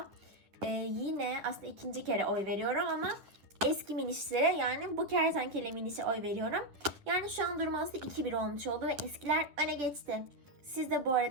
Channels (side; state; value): left; late; 10 ms